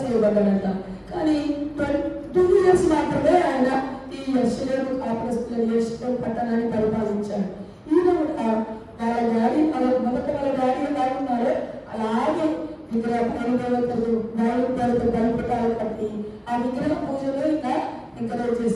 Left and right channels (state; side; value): identical; both; correlation 1.00